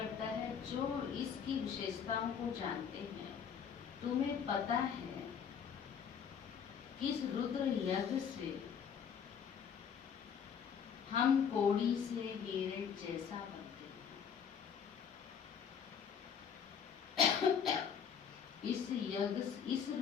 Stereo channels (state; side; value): quieter; right; 7.3 dB